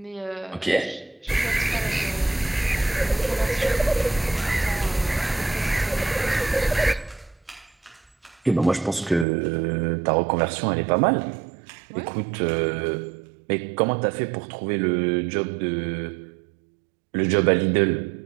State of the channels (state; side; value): drops out; left; at 9.2 s